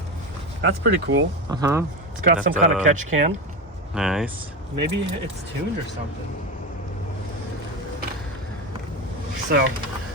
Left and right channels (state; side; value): normal; both; correlation 0.19